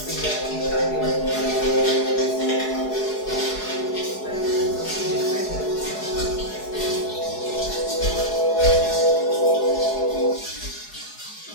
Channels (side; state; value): right; late; 4.7 ms